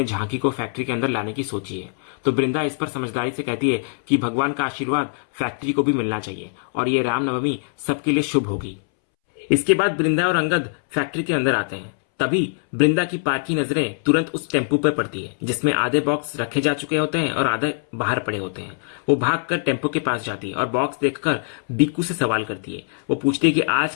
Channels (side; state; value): right; silent; 64 dB below the other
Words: झांकी को फैक्ट्री के अंदर लाने की सोची है। तो वृंदा इस पर समझदारी से कहती है कि भगवान का आशीर्वाद फैक्ट्री को भी मिलना चाहिए और ये रामनवमी सबके लिए शुभ होगी। इसके बाद वृंदा और अंगद फैक्ट्री के अंदर आते हैं। तभी वृंदा की पार की नजरें तुरंत उस टेम्पू पर पड़ती है जिसमें आधे बॉक्स रखे जा चुके होते हैं और आधे बाहर पड़े होते हैं। वो भागकर टेम्पू के पास जाती है और बॉक्स देखकर बीकू से सवाल करती है। वो पूछती है कि आज